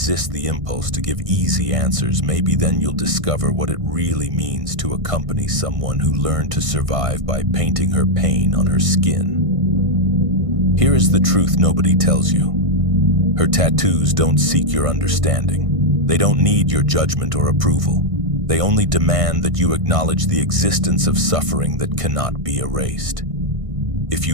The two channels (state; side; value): late; left; 1.6 ms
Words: the impulse to give easy answers, maybe then you'll discover what it really means to accompany someone who learned to survive by painting her pain on her skin. Here is the truth nobody tells you. Her tattoos don't seek your understanding. They don't need your judgment or approval. They only demand that you acknowledge the existence of suffering that cannot be erased. If